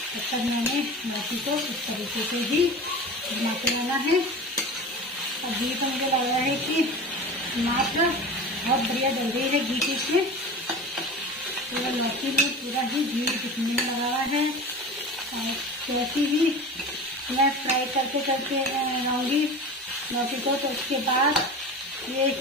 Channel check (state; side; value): normal; both; correlation 0.33